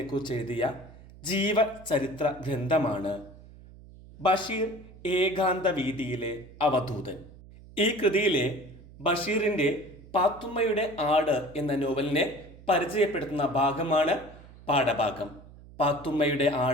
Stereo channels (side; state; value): right; noise; hum, 20 dB below the sound